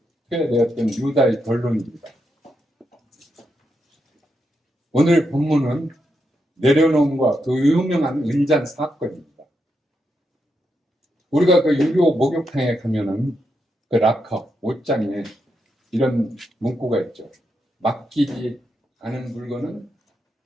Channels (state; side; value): normal; both; correlation 0.83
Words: 투여되었던 유다의 결론입니다. 오늘 본문은 내려놓음과 그 유명한 은잔 사건입니다. 우리가 그 유교 목욕탕에 가면은 그 락커, 옷장에 이런 문구가 있죠. 맡기지 않은 물건은